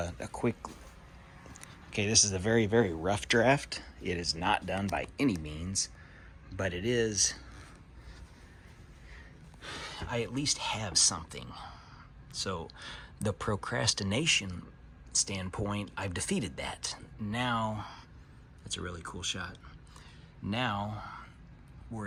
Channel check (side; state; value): both; identical; correlation 1.00